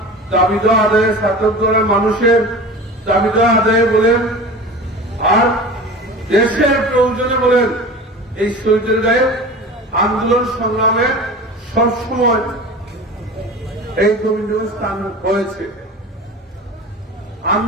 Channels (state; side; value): normal; both; correlation 0.35